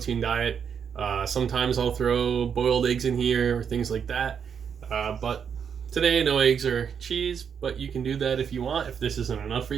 diet. Sometimes I'll throw boiled eggs in here or things like that. But today, no eggs or cheese, but you can do that if you want, if this isn't enough for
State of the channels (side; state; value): left; quieter; 7.2 dB